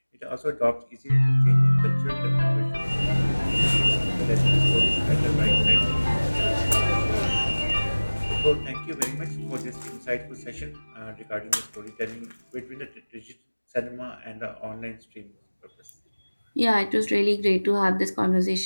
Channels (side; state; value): both; inverted; correlation -1.00